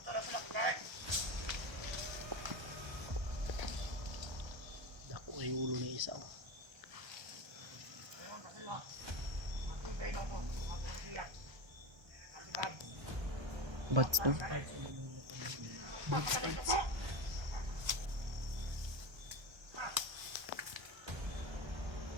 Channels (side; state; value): left; late; 1.3 ms